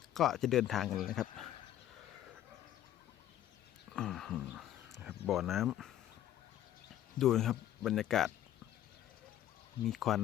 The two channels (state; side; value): quieter; right; 12.1 dB